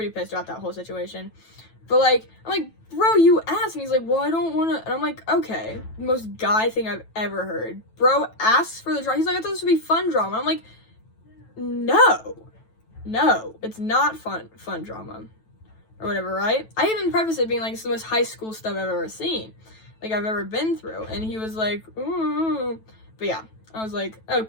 pissed about that whole situation. But like, I'm like, bro, you asked. And he's like, well, I don't want to. And I'm like, okay, most guy thing I've ever heard. Bro asks for the drama. He's like, I thought this would be fun drama. I'm like, no, it's not fun drama or whatever, right? I even prefaced it being like, it's the most high school stuff I've ever seen, like I've ever been through. And he was like, ooh. But yeah, I was like,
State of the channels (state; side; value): late; right; 9.1 ms